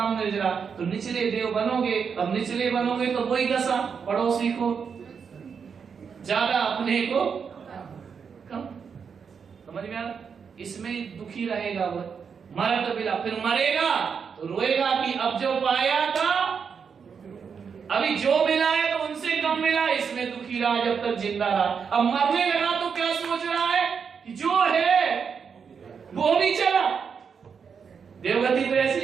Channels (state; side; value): quieter; left; 6.4 dB